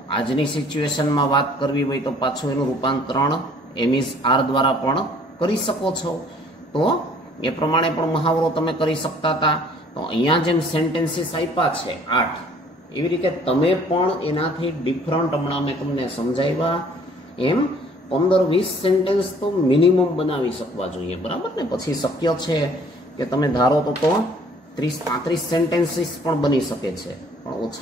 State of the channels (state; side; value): normal; both; correlation 0.57